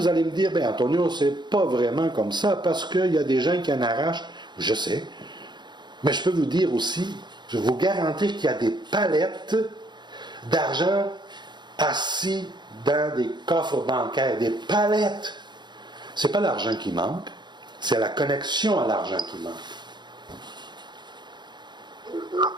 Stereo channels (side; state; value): left; late; 0.21 ms